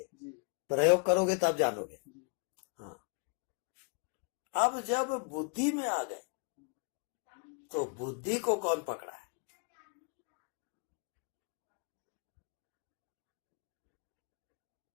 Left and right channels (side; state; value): right; quieter; 38.2 dB